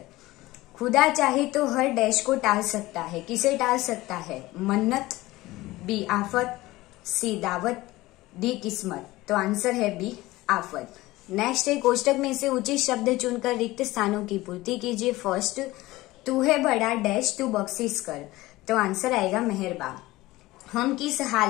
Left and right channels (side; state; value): right; quieter; 18.7 dB